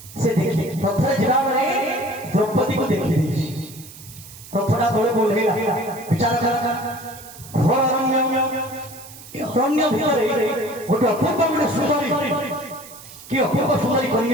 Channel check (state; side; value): noise; right; hiss, 17 dB below the sound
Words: ସେ ଦେଖି ରଥରେ ଯିବା ବେଳେ ଦ୍ରୌପଦୀକୁ ଦେଖି ଦେଇଛି ରଥଟା ତଳେ ଓହ୍ଲେଇଲା ବିଚାର କଲା ଘୋର ଅରଣ୍ୟ ଭିତରେ ଗୋଟେ ଅପୂର୍ବ ଗୋଟେ ସୁନ୍ଦରୀ କି ଅପୂର୍ବ ସୁନ୍ଦରୀ